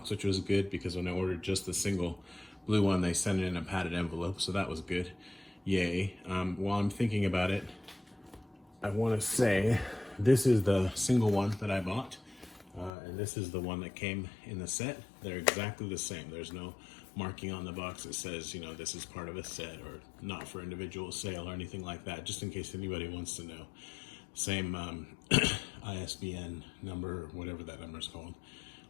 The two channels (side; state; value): right; drops out; at 12.9 s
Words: which was good because when I ordered just the single blue one, they sent it in a padded envelope, so that was good. Yay. While I'm thinking about it, I want to say this is the single one that I bought. And this is the one that came in the set. They're exactly the same. There's no marking on the box that says, this is part of a set or not for individual sale or anything like that, just in case anybody wants to know. Same ISBN number, or whatever that number is called.